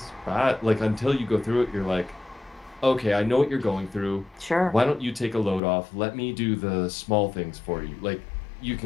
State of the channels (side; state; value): right; drops out; at 5.6 s